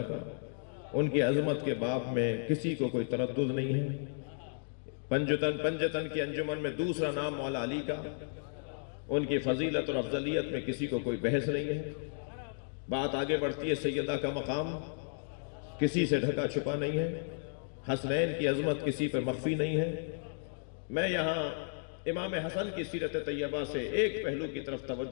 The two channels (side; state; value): right; silent; digital silence